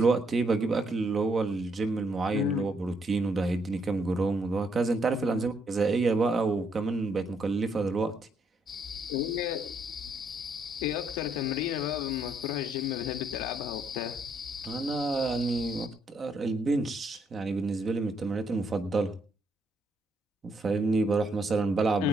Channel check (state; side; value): normal; both; correlation 0.72